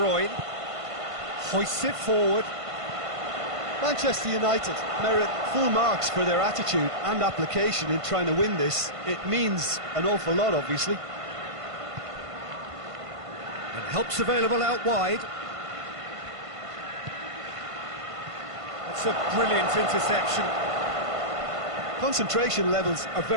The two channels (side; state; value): left; late; 1.5 ms